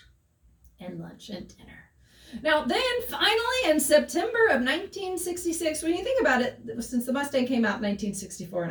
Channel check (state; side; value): identical; both; correlation 1.00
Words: And lunch and dinner. Now, then, finally, in September of 1966, when you think about it, since the Mustang came out in 1964